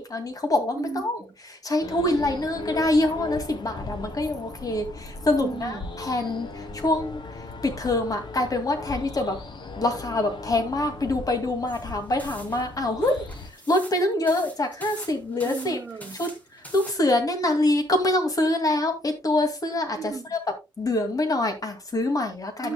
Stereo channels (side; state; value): both; normal; correlation 0.67